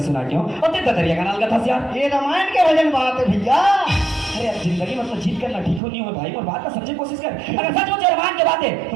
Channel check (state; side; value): drops out; left; at 5.8 s